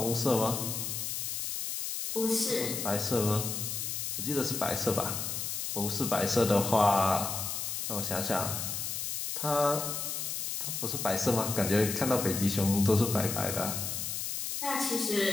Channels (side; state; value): left; noise; hiss, 3 dB below the sound